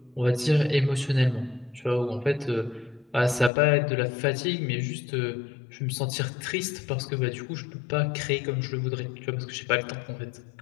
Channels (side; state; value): right; drops out; at 3.5 s